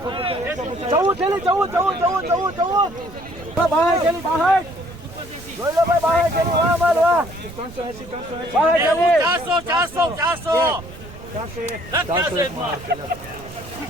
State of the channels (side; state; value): right; noise; rumble, 17 dB below the sound